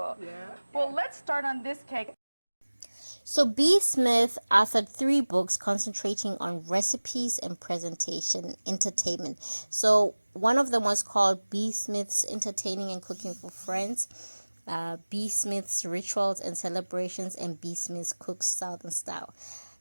Yeah. Well, let's start on this cake. So B. Smith authored 3 books concentrating on recipes and presentation entertainment. So one of them was called B. Smith's Entertaining and Cooking for Friends, B. Smith's Rituals and Celebrations, and B. Smith's Cooks Southern Style.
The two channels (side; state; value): both; inverted; correlation -1.00